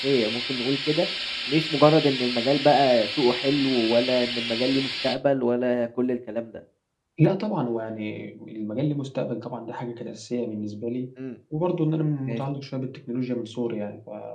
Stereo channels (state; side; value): identical; both; correlation 1.00